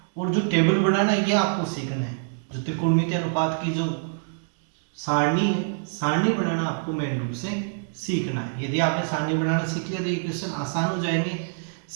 और जो टेबल बनाना है ये आपको सीखना है। जो त्रिकोणमितीय अनुपात की जो सारणी है, सारणी बनाना आपको मेन रूप से सीखना है। यदि आपने सारणी बनाना सीख लिया तो ये क्वेश्चन आसान हो जाएंगे।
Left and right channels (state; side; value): silent; left; digital silence